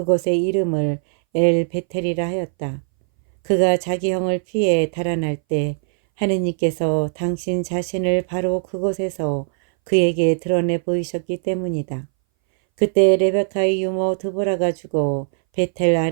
이름을 엘 베텔이라 하였다. 그가 자기 형을 피해 달아날 때 하느님께서 당신 자신을 바로 그곳에서 그에게 드러내 보이셨기 때문이다. 그때 레베카의 유모 드보라가 죽어 베텔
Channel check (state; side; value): silent; left; 62 dB below the other